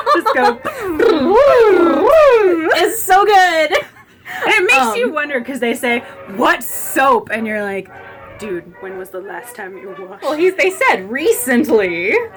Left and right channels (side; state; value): both; identical; correlation 1.00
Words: Just go. It's so good. And it makes you wonder, because they say, what soap? And you're like, dude, when was the last time you washed? Well, they said recently.